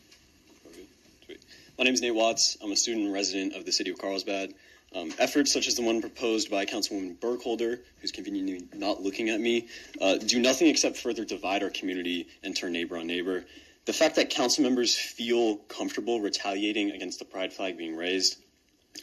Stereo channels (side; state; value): both; identical; correlation 1.00